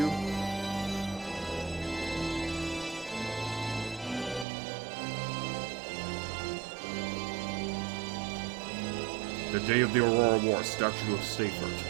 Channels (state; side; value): drops out; left; at 4.5 s